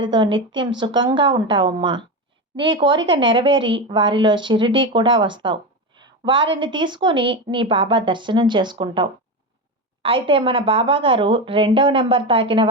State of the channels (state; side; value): normal; both; correlation 0.18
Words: నిత్యం సుఖంగా ఉంటావమ్మా. నీ కోరిక నెరవేరి వారిలో షిరిడీ కూడా వస్తావు. వారిని తీసుకొని నీ బాబా దర్శనం చేసుకుంటావు. అయితే మన బాబా గారు 2వ నెంబర్ తాకిన